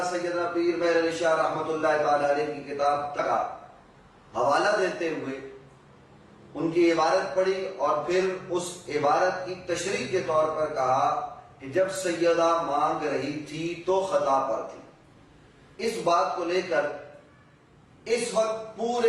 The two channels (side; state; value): both; identical; correlation 1.00